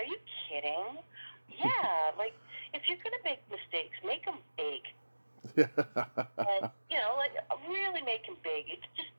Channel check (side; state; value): both; inverted; correlation -1.00